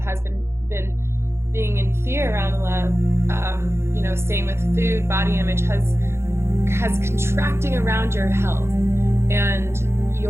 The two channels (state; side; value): late; left; 0.12 ms